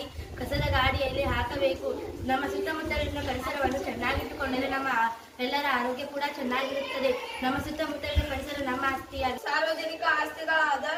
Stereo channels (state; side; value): identical; both; correlation 1.00